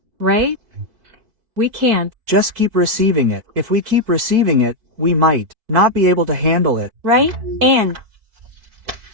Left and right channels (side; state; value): left; late; 4.6 ms